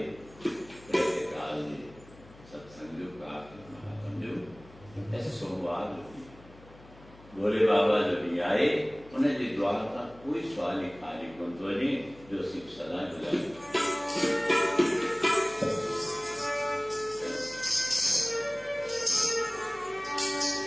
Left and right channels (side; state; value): left; noise; hum, 22 dB below the sound